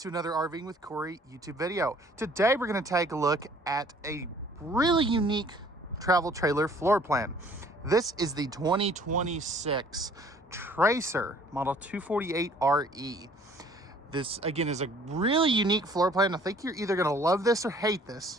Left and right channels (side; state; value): both; normal; correlation 0.56